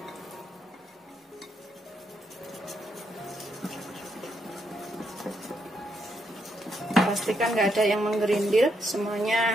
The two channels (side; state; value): both; normal; correlation 0.78